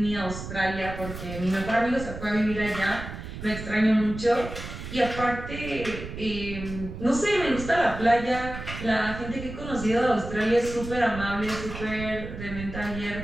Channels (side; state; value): right; noise; rumble, 9 dB below the sound